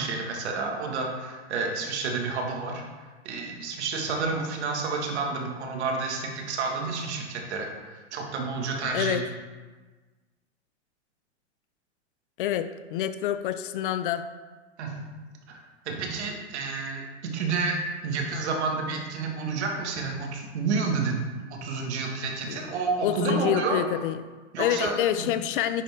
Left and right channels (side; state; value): both; normal; correlation 0.04